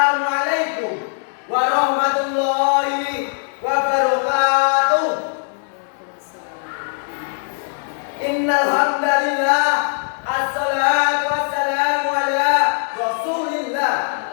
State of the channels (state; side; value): silent; right; digital silence